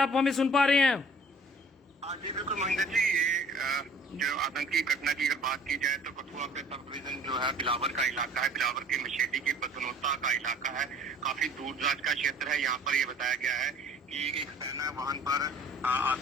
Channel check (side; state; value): both; normal; correlation 0.52